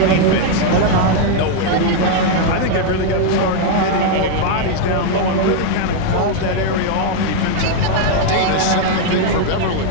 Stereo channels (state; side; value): different; both; correlation 0.00